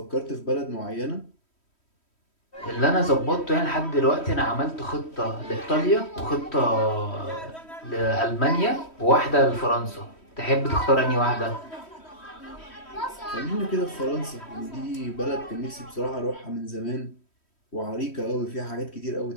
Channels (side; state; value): right; late; 3.1 ms